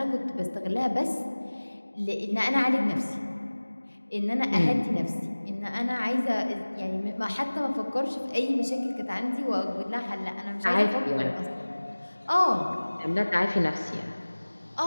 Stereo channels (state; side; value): inverted; both; correlation -1.00